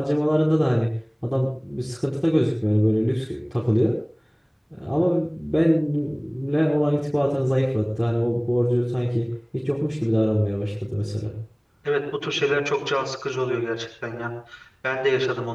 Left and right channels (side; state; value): both; identical; correlation 1.00